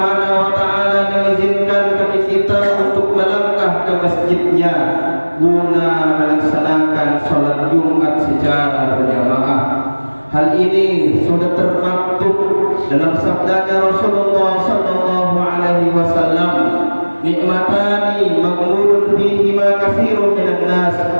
wa taala mengizinkan bagi kita untuk melangkah ke masjidnya guna melaksanakan salat Jumat secara berjamaah. Hal ini sudah termaktub dalam sabdanya Rasulullah sallallahu alaihi wasallam, nikmatani maghmurun fihima katsirun minan nas,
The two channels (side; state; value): both; inverted; correlation -1.00